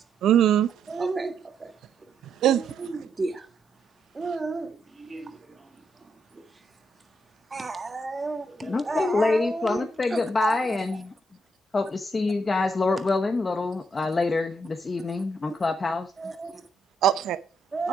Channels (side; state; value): both; normal; correlation 0.77